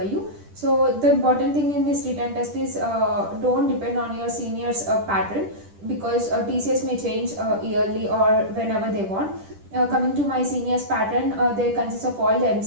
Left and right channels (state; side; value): late; left; 10 ms